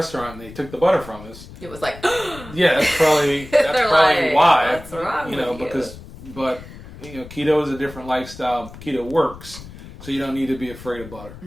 and they took the butter from us. It was like, Yeah, that's probably like, why. "What's wrong with you?" Because keto is a different lifestyle. Keto works, so you don't need to be afraid of butter.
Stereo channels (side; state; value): left; noise; rumble, 16 dB below the sound